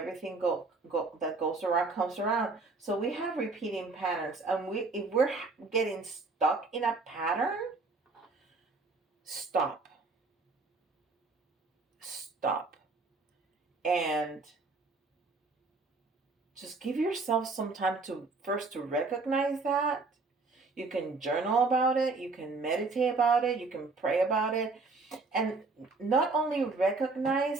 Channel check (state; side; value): quieter; left; 3.9 dB